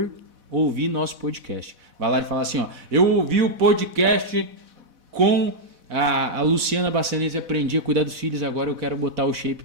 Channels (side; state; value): left; late; 4.1 ms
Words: ouvir nosso podcast. Vai lá e fala assim, ó, eu ouvi o podcast com a Luciana Bassanese, aprendi a cuidar dos filhos, agora eu quero botar o shape